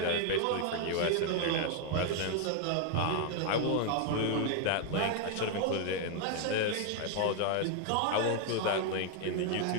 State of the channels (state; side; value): different; both; correlation 0.00